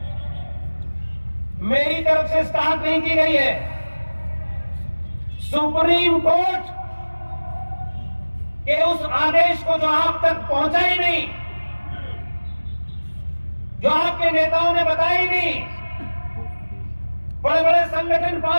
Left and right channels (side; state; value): both; inverted; correlation -1.00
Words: मेरी तरफ से स्टार्ट नहीं की गई है। सुप्रीम कोर्ट के उस आदेश को जो आप तक पहुंचा ही नहीं, जो आपके नेताओं ने बताया ही नहीं, बड़े बड़े संगठन